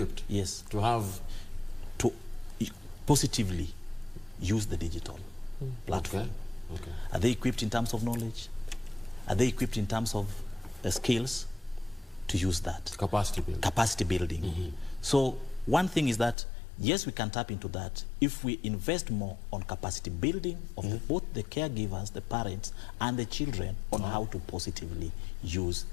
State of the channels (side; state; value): right; drops out; at 16.4 s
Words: Yes. To positively use the digital platform. Okay. Are they equipped in terms of knowledge? Are they equipped in terms of skills to use that? Capacity building. So one thing is that, yes, we can tap into that if we invest more on capacity building of both the caregivers, the parents, and the children on how to positively use